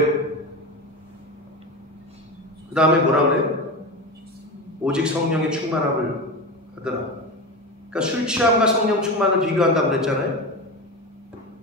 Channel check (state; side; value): normal; both; correlation 0.23